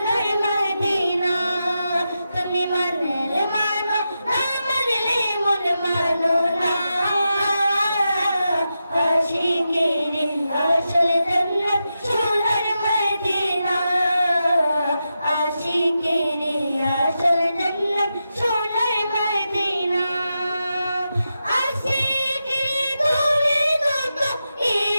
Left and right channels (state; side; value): inverted; both; correlation -0.89